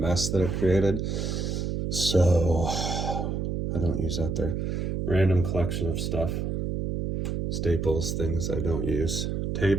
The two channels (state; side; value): noise; right; hum, 1 dB below the sound